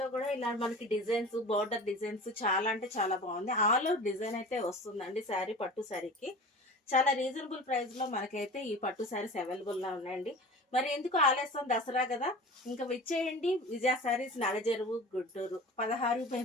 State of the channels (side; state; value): both; normal; correlation 0.37